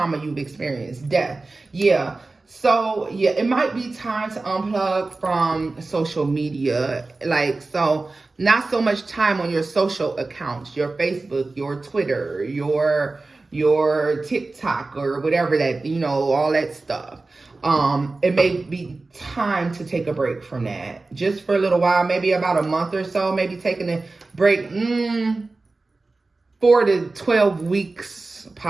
you've experienced, death. Yeah. So, yeah, it might be time to unplug from social media. Like, so not so much time on your social accounts, your Facebook, your Twitter, your TikTok or whatever that, you know, all that stuff. It may be time to take a break from that just for a little while, maybe about a month or so, maybe taking a break, 4 to 12 weeks,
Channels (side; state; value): left; quieter; 3.4 dB